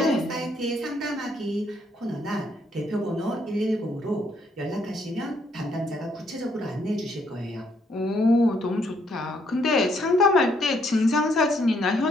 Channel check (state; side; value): normal; both; correlation 0.71